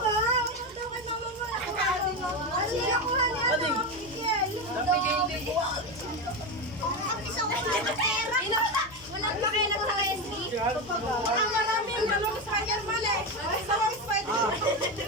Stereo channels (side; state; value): right; noise; hum, 26 dB below the sound